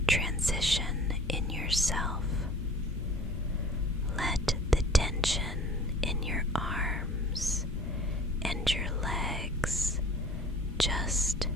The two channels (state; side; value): normal; both; correlation 0.45